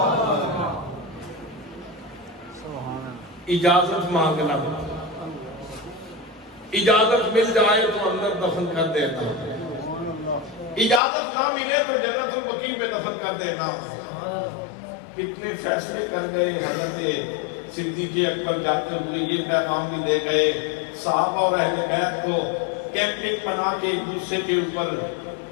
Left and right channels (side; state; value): right; drops out; at 11.0 s